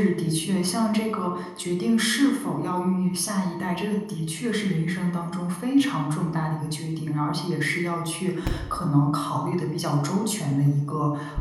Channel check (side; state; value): both; identical; correlation 1.00